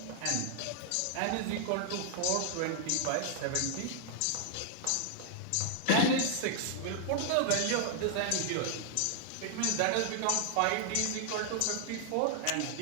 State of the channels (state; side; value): different; both; correlation -0.01